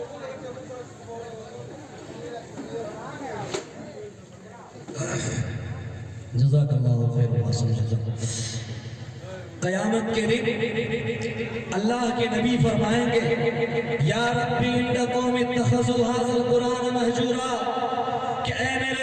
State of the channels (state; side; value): identical; both; correlation 1.00